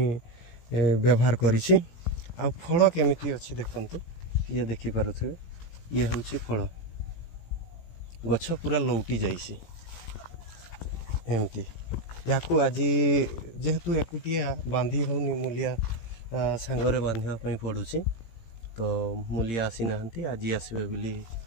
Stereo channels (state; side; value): late; right; 18 ms